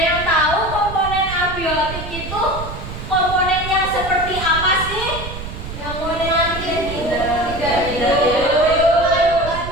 yang tahu komponen abiotik itu komponen yang seperti apa sih? Yang model tidak.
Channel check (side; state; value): right; noise; rumble, 9 dB below the sound